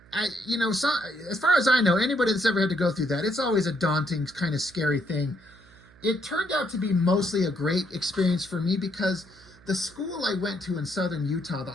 as far as I know, anybody that's ever had to go through that, it's always a daunting, kind of scary thing. It turned out to be mostly a great experience for me because the school I went to in southern Utah, the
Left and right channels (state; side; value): noise; right; hum, 25 dB below the sound